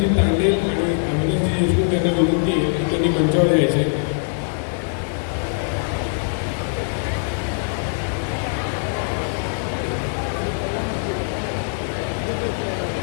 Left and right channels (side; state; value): right; silent; 62 dB below the other